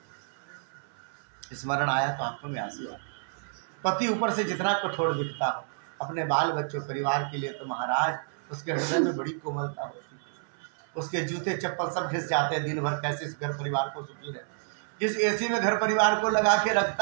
स्मरण आया तो आंखों में आंसू आए। पति ऊपर से जितना कठोर दिखता हो, अपने बाल बच्चों परिवार के लिए तो महाराज उसके हृदय में बड़ी कोमलता होती है। उसके जूते चप्पल सब घिस जाते हैं दिन भर, कैसे इस घर परिवार को सुखी रहे। जिस एसी में घर परिवार को लगा के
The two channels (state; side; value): silent; left; 58 dB below the other